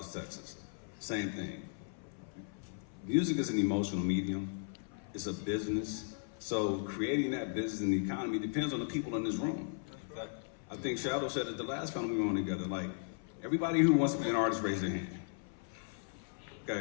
Texas. Same thing. Music is an emotional medium. It's a business. So creating that business and the economy depends on the people in this room. I think Shadow said at the last panel we were on together, like, everybody who wants to be an artist, raise their hand.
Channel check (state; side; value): silent; right; 53 dB below the other